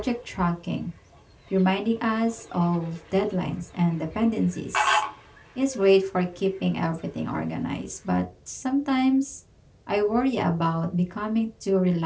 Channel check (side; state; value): both; identical; correlation 1.00